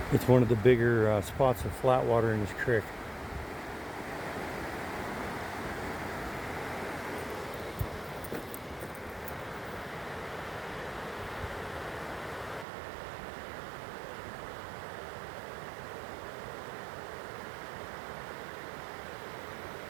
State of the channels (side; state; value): left; drops out; at 12.7 s